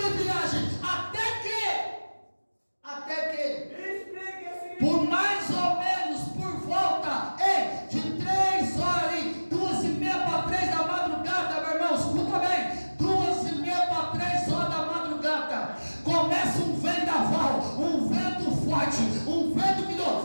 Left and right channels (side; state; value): both; inverted; correlation -1.00